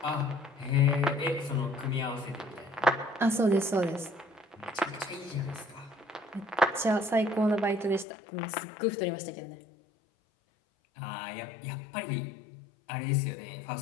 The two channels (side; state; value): right; drops out; at 8.1 s